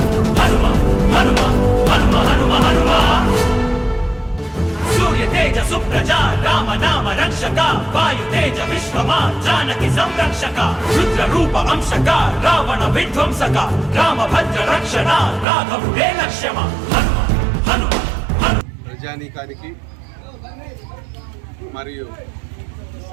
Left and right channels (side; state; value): left; drops out; at 15.5 s